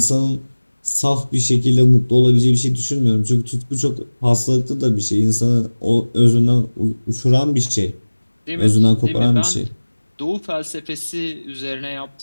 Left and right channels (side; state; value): both; inverted; correlation -1.00